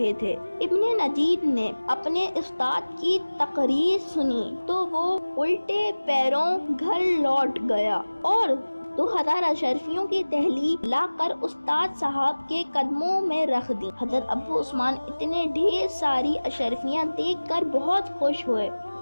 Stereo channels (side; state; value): both; inverted; correlation -1.00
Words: تھے۔ ابن نجید نے اپنے استاد کی تقریر سنی تو وہ الٹے پیروں گھر لوٹ گیا اور 2000 اشرفیوں کی تحویل لا کر استاد صاحب کے قدموں میں رکھ دی۔ حضرت ابو عثمان اتنے ڈھیر ساری اشرفیاں دیکھ کر بہت خوش ہوئے